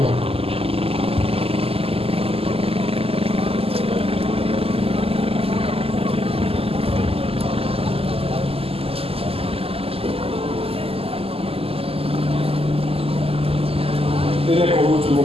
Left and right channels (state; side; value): late; left; 0.28 ms